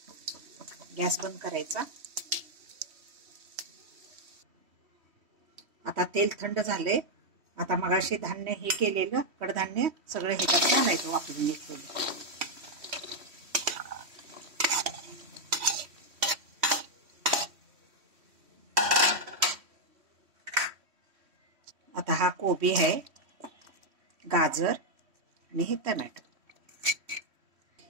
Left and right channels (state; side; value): late; left; 3.1 ms